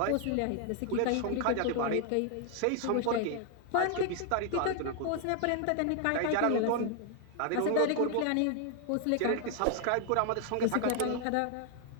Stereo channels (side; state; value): both; different; correlation 0.00